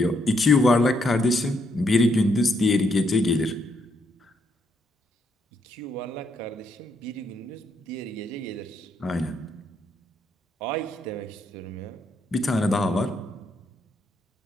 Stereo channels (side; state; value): both; normal; correlation 0.75